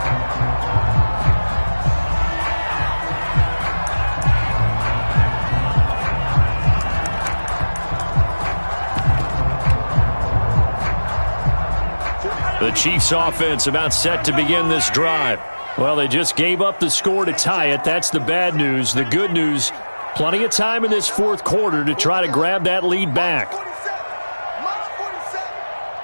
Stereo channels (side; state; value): both; inverted; correlation -1.00